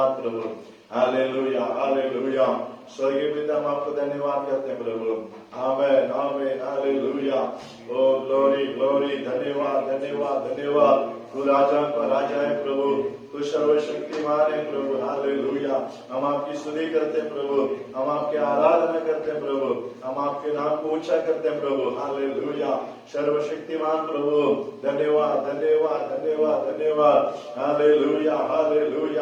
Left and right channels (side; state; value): both; identical; correlation 1.00